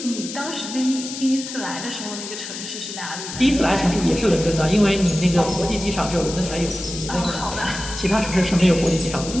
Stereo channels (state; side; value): noise; left; hiss, 9 dB below the sound